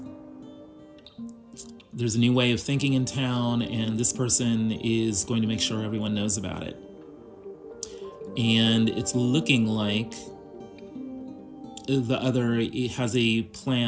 There's a new way of thinking in town, and this person is going to make sure everyone knows about it. And it's looking like the other has a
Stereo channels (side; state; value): both; identical; correlation 1.00